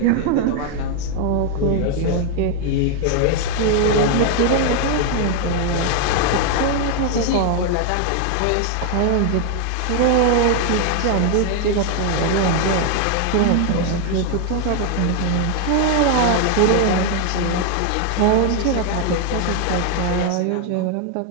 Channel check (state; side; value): different; both; correlation 0.00